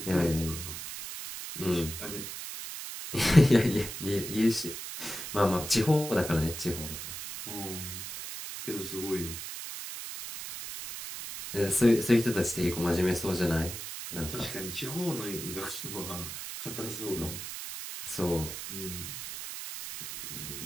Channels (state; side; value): noise; right; hiss, 8 dB below the sound